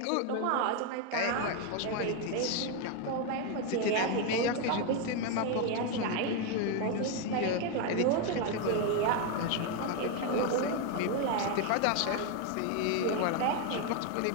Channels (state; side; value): different; both; correlation 0.01